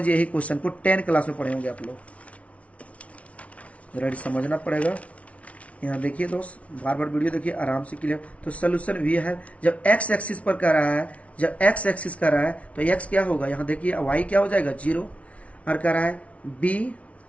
यही क्वेश्चन को 10 क्लास में पढ़े होंगे आप लोग, जरा समझना पड़ेगा। यहाँ देखिए दोस्त, बार बार वीडियो देखिए आराम से क्लियर। तो सोल्यूशन भी है, जब एक्स एक्सिस पर कर रहा है, जब एक्स एक्सिस कर रहा है तो एक्स क्या होगा, यहाँ देखिए वाई क्या हो जाएगा 0, और कर रहा है बी,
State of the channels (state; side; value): late; right; 0.064 ms